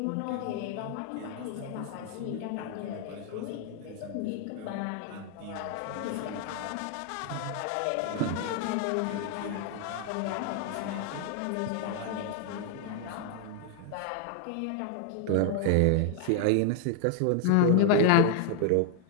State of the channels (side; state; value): both; different; correlation 0.00